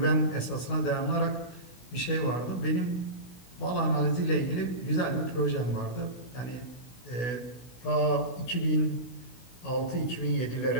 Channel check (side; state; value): right; late; 16 ms